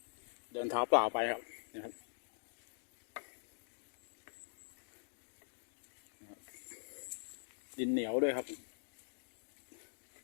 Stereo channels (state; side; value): silent; right; digital silence